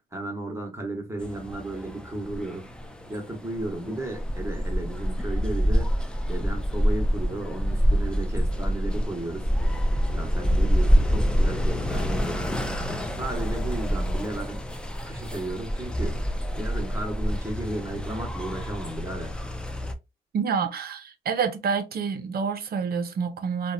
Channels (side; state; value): both; normal; correlation 0.86